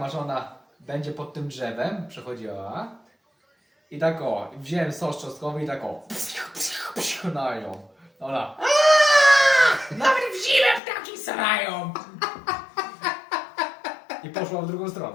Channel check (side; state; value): right; drops out; at 10.8 s